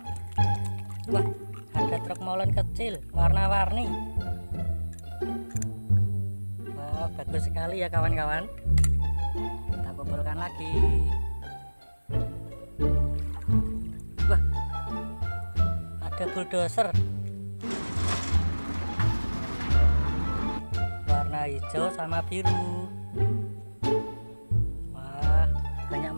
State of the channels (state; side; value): inverted; both; correlation -1.00